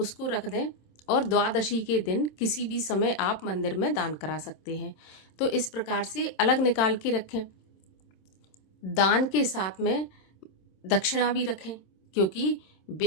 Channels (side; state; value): right; late; 26 ms